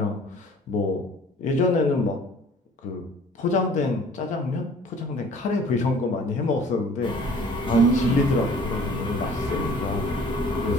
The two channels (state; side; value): normal; both; correlation 0.51